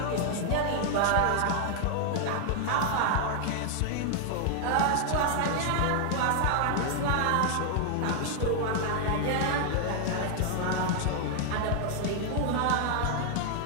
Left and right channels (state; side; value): different; both; correlation 0.00